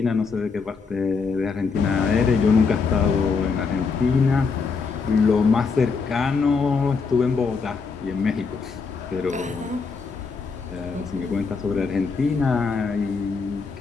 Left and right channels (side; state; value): right; quieter; 5.0 dB